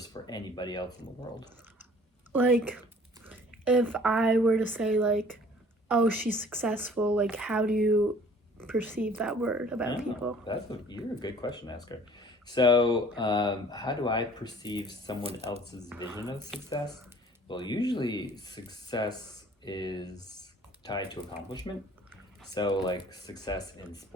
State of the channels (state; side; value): normal; both; correlation 0.52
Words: for anybody else in the world? Like, if I were to say, like, oh, she's successful, like, how do you perceive that word about people? You're a good question asker. So, how do I perceive someone else's vision of success? Well, usually success is tied to accomplishment. So, like success in